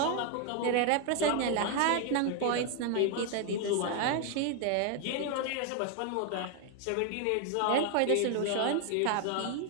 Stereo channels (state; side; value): different; both; correlation 0.01